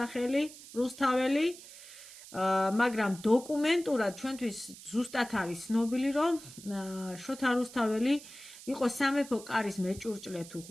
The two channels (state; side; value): noise; right; hiss, 17 dB below the sound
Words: რუსთაველი, მაგრამ დოკუმენტურად ჩვენთვის ზუსტად არის ცნობილი, რომ შოთა რუსთაველი იყო სამეფო კარის მეჭურჭლე თუ